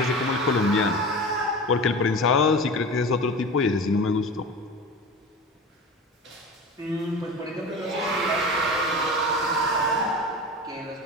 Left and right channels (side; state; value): both; normal; correlation 0.32